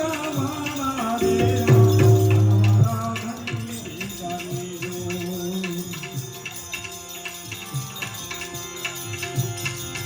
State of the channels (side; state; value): both; identical; correlation 1.00